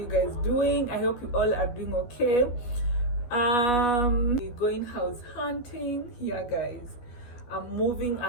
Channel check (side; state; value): right; late; 12 ms